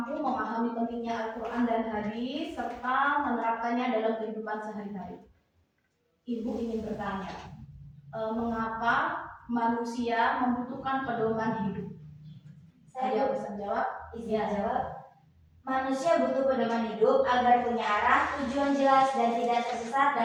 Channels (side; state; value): both; identical; correlation 1.00